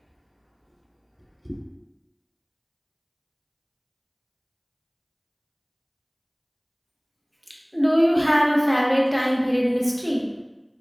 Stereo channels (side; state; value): both; identical; correlation 1.00